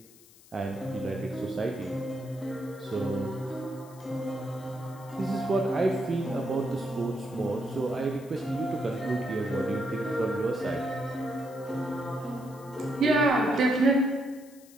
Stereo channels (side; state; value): left; noise; hiss, 24 dB below the sound